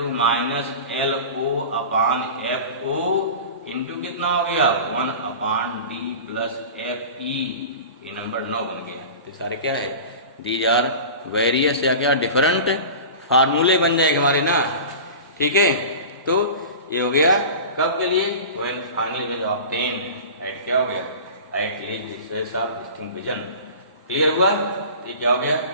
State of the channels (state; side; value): inverted; both; correlation -0.35